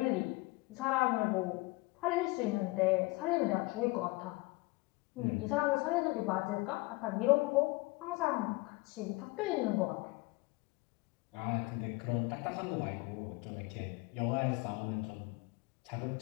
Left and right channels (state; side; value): quieter; right; 23.9 dB